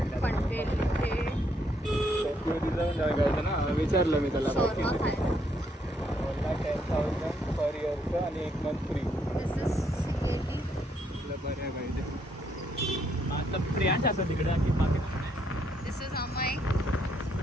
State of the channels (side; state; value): both; normal; correlation 0.73